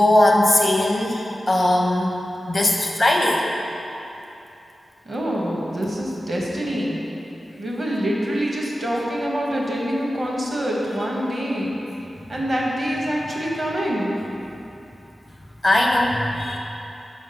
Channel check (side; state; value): both; normal; correlation 0.93